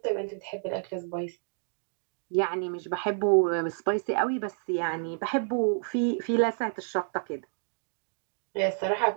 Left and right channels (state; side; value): silent; left; digital silence